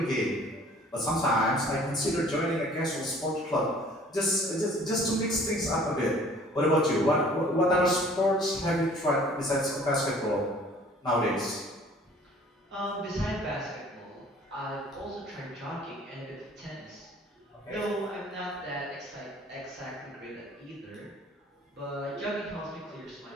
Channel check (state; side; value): normal; both; correlation 0.52